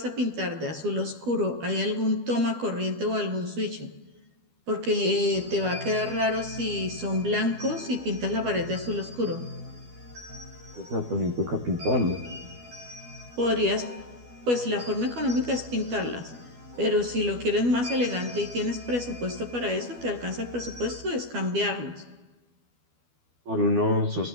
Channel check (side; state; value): left; late; 12 ms